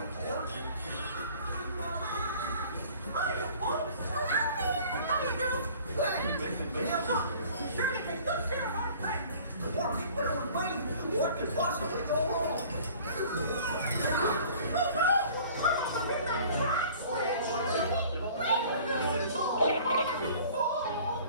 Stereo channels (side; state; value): both; inverted; correlation -0.49